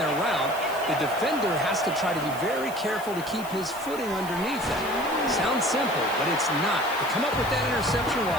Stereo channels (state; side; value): noise; left; hiss, 16 dB below the sound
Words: route. The defender has to try to be very careful to keep his footing underneath it. Sounds simple, but it's not. To come up with that interception